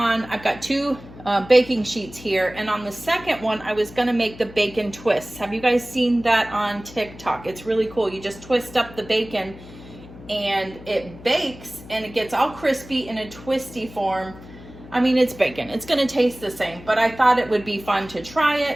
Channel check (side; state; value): left; noise; hum, 18 dB below the sound